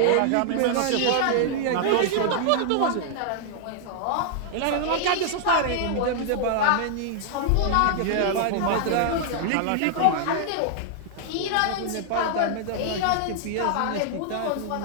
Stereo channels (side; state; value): both; different; correlation 0.00